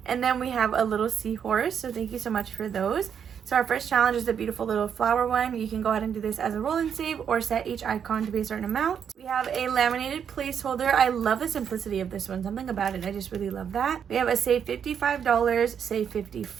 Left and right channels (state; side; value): quieter; left; 7.9 dB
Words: And then we have a little seahorse, so thank you so much for those. So our first challenge is the beautiful little flower one. You can go ahead and do this as a roll and save, or set each icon to be a certain amount. We have a laminated placeholder. I love the simplicity of this one. Something about it, I just really love that. We have a save $55, save